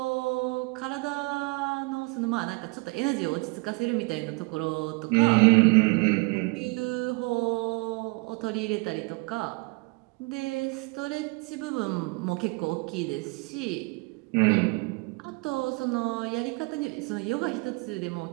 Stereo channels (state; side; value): quieter; left; 28.5 dB